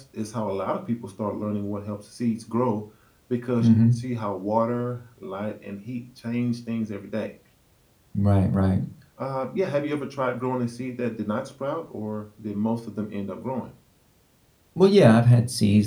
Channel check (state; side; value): identical; both; correlation 1.00